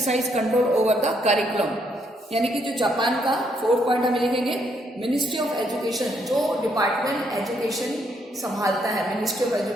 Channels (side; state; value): both; normal; correlation 0.73